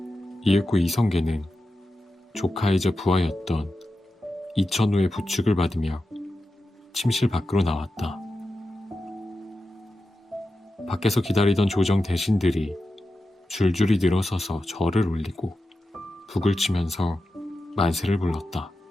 이윽고 이성계는 조카이자 부하였던 이천우의 부축을 받으며 침실 밖으로 나왔다. 밖에서 기다리던 조정 대신들이 줄줄이 늘어서서 절을 올리고 북을 치면서 만세를 불렀다.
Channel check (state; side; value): normal; both; correlation 0.91